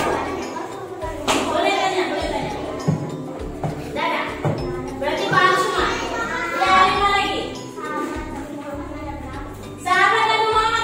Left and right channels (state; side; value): identical; both; correlation 1.00